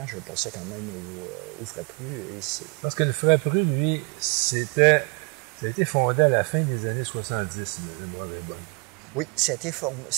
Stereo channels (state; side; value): quieter; left; 33.6 dB